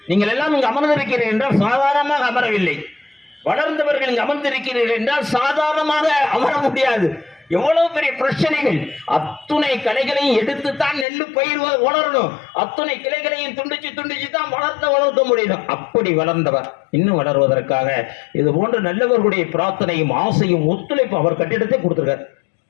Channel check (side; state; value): right; drops out; at 11.1 s